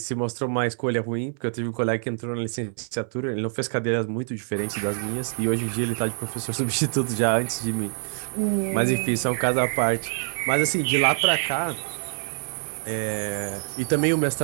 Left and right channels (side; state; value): left; silent; digital silence